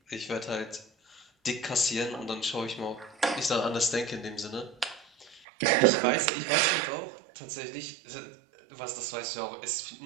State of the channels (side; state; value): left; drops out; at 5.4 s